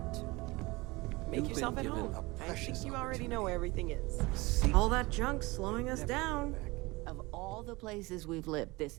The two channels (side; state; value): left; quieter; 22.8 dB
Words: Make You've yourself been at given home. a I think you already know where everything is. All that junk's slowing us down. Of all the places we've lived,